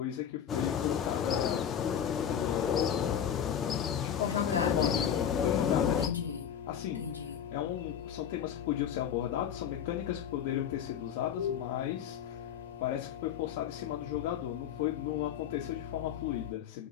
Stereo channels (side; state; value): right; quieter; 9.0 dB